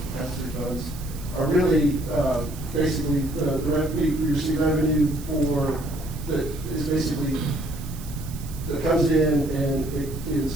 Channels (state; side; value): noise; right; hiss, 17 dB below the sound